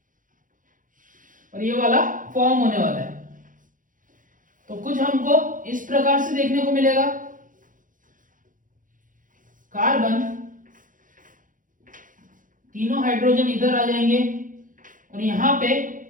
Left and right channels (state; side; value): late; left; 0.39 ms